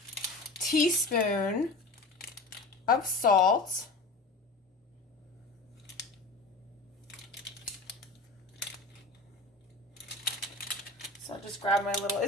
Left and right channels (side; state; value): right; quieter; 3.1 dB